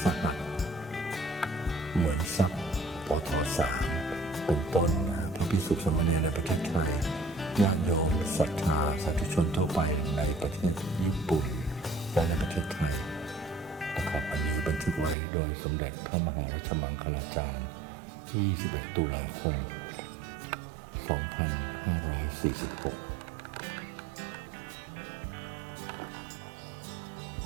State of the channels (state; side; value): drops out; left; at 15.2 s